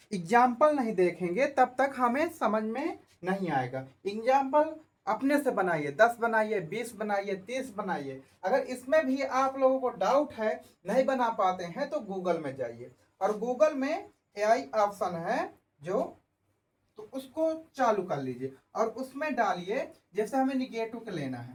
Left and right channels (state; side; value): identical; both; correlation 1.00